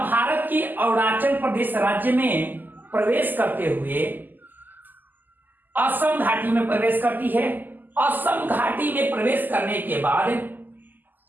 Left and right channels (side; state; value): left; late; 0.087 ms